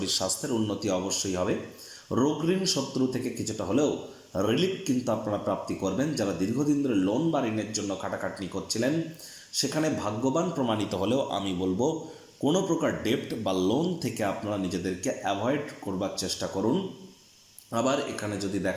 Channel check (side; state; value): both; identical; correlation 1.00